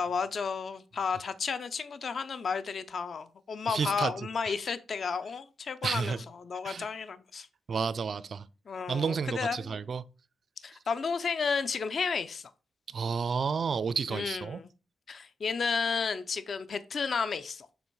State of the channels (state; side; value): normal; both; correlation 0.82